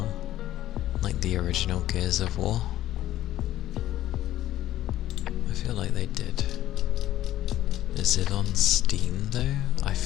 Like the original Gears of War? I feel like they did. Is it on Steam though? I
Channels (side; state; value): right; quieter; 13.6 dB